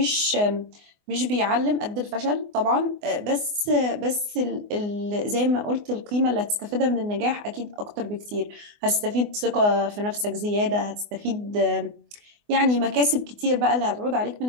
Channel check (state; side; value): late; left; 24 ms